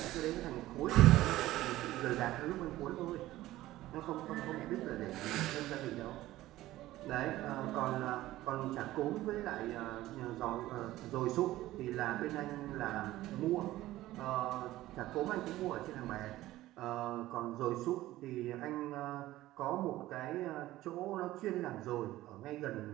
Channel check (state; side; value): quieter; left; 16.0 dB